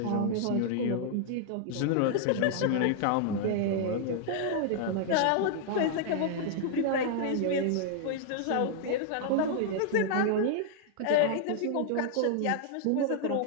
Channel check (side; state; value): both; different; correlation -0.01